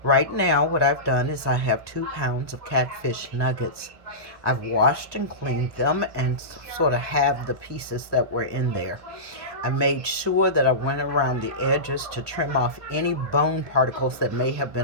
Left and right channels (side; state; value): left; late; 1.2 ms